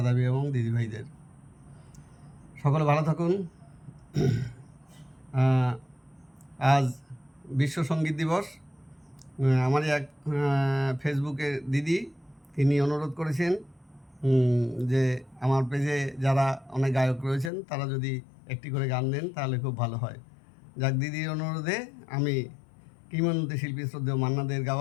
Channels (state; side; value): drops out; right; at 17.5 s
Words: এবং দিদিভাইদের সকলে ভালো থাকুন। আজ বিশ্ব সঙ্গীত দিবস। আমারই এক ফেসবুকে দিদি তিনি অনুরোধ করেছেন যে আমার পেজে যারা অনেক গায়ক রয়েছেন তারা যদি একটি করে গান দেন তাহলে খুব ভালো হয়। যাক, দিদির অনুরোধে আমি কিংবদন্তি শিল্পী শ্রদ্ধেয় মান্না দের